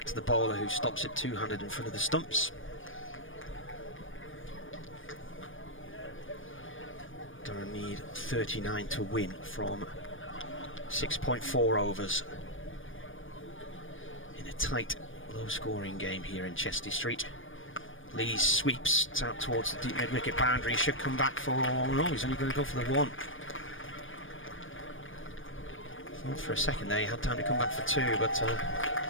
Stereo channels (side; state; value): right; late; 0.57 ms